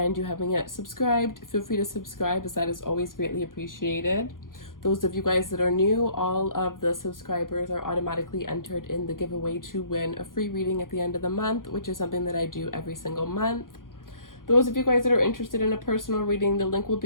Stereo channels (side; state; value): right; late; 0.90 ms